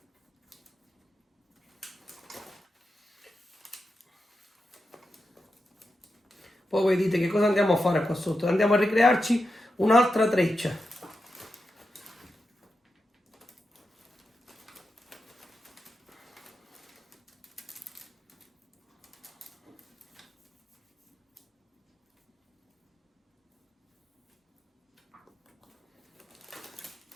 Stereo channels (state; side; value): normal; both; correlation 0.89